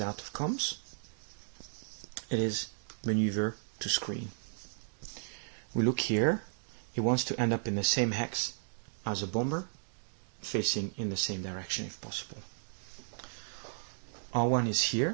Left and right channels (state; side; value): silent; left; digital silence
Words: out of comms. It is maneuver to screen. We look here, it wants to end up in the same hex as a bomber, facing in the same direction if possible. R1 is